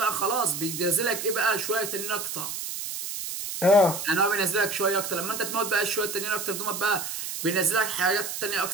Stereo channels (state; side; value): noise; right; hiss, 6 dB below the sound